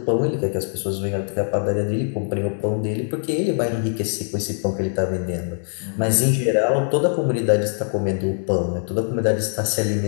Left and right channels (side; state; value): right; silent; digital silence